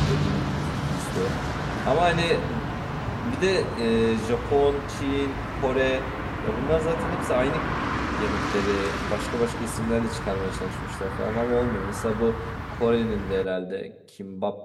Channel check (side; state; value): both; identical; correlation 1.00